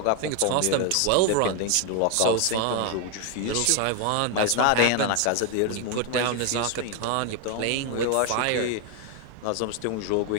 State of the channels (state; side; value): different; both; correlation 0.01